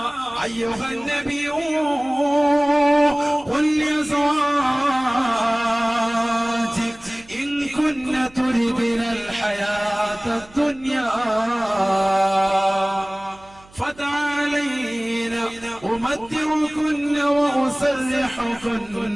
അയ്യുഹൻ നബിയ്യു ഖുൽ ലിഅസ്വാജിക ഇൻ കുന്ന തുരിദുന الحياة الدنيا فتعالينا أمتعكن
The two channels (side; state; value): right; noise; hum, 26 dB below the sound